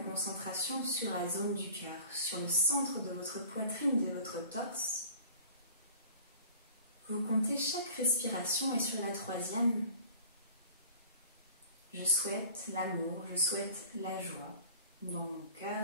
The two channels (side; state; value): both; inverted; correlation -0.47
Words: concentration sur la zone du cœur, sur le centre de votre poitrine, de votre torse. Vous comptez chaque respiration et sur la troisième, je souhaite l'amour, je souhaite la joie dans mon